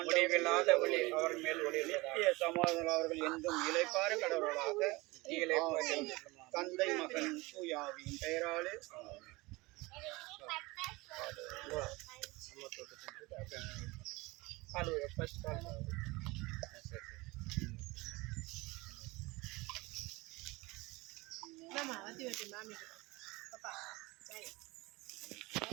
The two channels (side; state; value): left; quieter; 22.7 dB